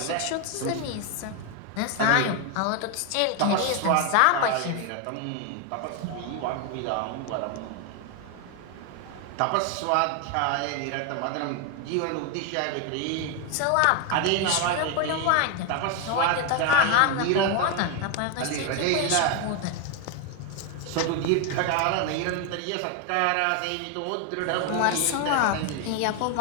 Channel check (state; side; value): different; both; correlation 0.01